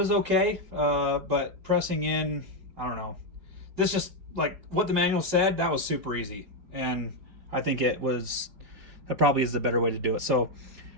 okay, but pressing in, I don't know. This just, like what the manual said, that was super easy. And I think that probably is the better way to do it. So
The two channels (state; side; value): late; left; 4.8 ms